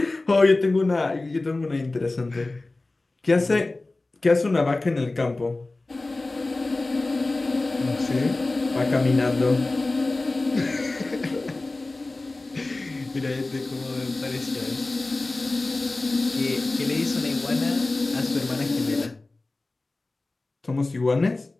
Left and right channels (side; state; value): right; quieter; 3.1 dB